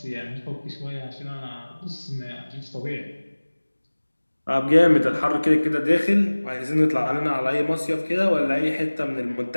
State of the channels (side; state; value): both; inverted; correlation -1.00